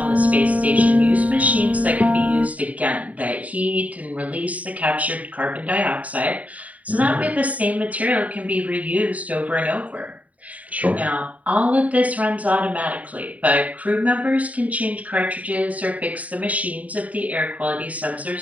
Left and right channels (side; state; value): left; late; 0.070 ms